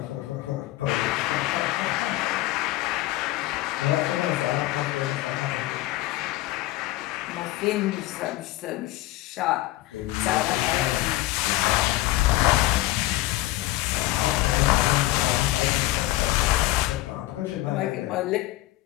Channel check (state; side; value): quieter; right; 17.5 dB